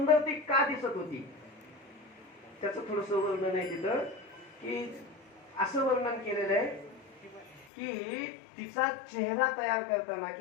ती का दिसत होती? त्याचं थोडस वर्णन आहे तिथं की असं वर्णन केलेलं आहे की तिचा चेहरा तयार करताना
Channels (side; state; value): right; drops out; at 7.7 s